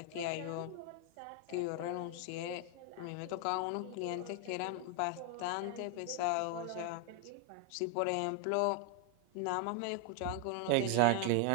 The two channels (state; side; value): different; both; correlation 0.01